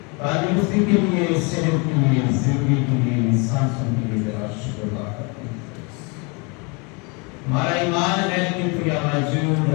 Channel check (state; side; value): quieter; right; 31.2 dB